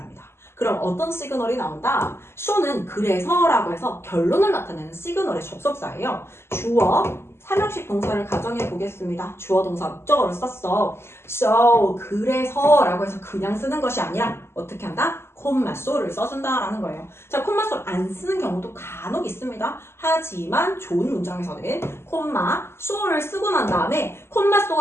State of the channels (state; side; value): late; right; 0.12 ms